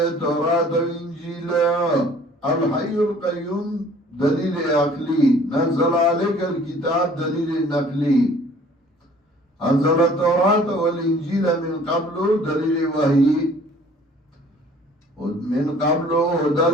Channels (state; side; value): normal; both; correlation 0.53